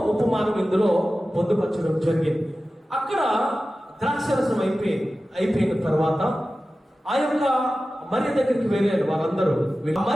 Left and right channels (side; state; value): both; normal; correlation 0.95